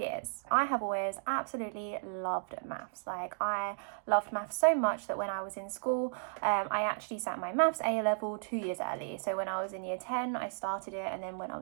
I have always absolutely loved maths. I loved maths so much that when I was in school I actually sat my maths A level 2 years early. So when I was in year 10 I started it, and then when I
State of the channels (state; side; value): silent; left; digital silence